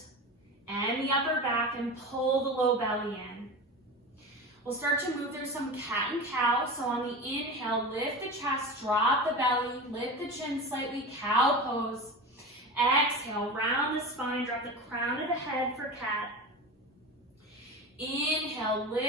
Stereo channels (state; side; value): normal; both; correlation 0.28